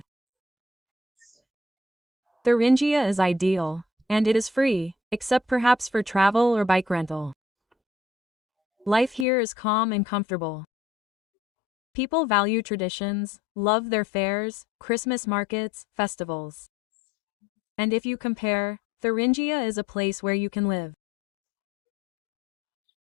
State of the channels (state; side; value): drops out; right; at 9.2 s